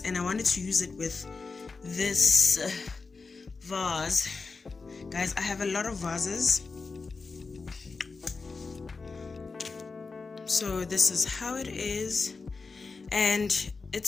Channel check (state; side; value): quieter; right; 4.3 dB